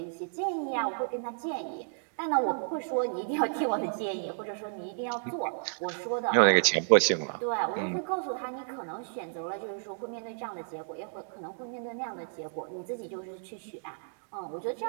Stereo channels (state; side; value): silent; left; digital silence